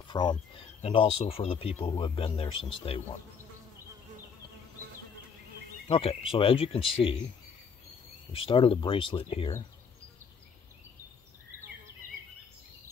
also for the people who have been there since day one. Okay, so as you can see, we started a bracelet here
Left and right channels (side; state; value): right; quieter; 6.2 dB